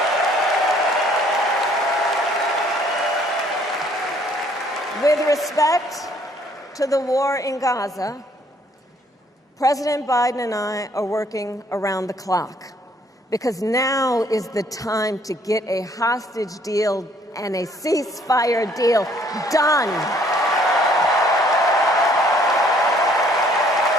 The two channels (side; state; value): both; normal; correlation 0.62